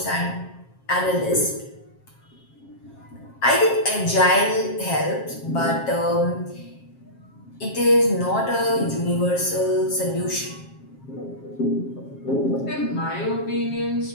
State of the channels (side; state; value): right; late; 7.4 ms